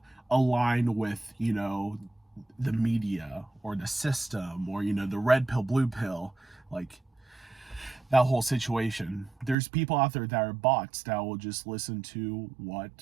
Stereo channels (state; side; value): drops out; left; at 9.6 s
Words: align with, the media or the system, or, the red pill, blue pill, like that whole situation. There's people out there that are bots that will just listen to